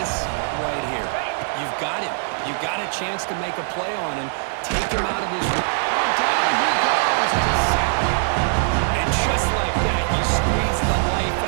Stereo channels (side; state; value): left; silent; digital silence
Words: right here. You've got him. You've got a chance to make a play on him. Take him out of his... Oh, down he goes. It's a sack. And just like that, you squeeze the life